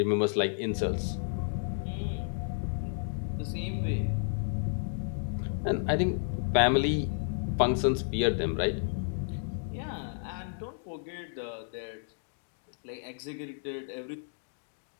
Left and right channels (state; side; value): silent; right; digital silence